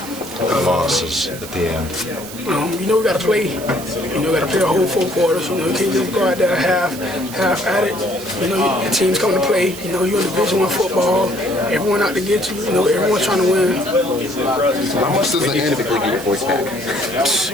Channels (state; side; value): noise; right; hiss, 13 dB below the sound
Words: The losses at the end. You know, we got to play. You know, we got to play a whole 4 quarters. You know, you can't just go out there half at it. You know, your team's coming to play. You know, you're in Division I football. Everyone out to get you. You know, everyone's trying to win. How much does it typically get your voice back?